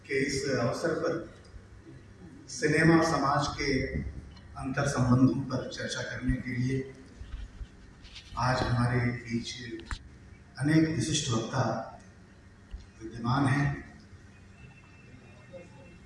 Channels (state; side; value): identical; both; correlation 1.00